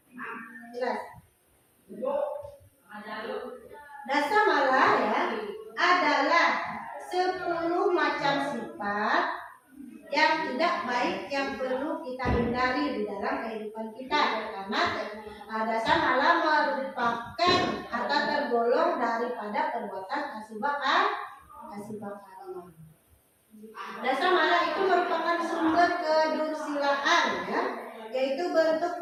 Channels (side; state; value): both; identical; correlation 1.00